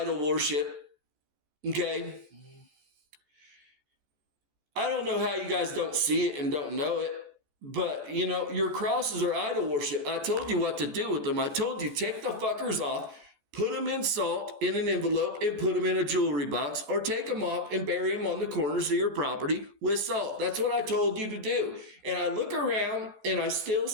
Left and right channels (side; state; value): left; late; 14 ms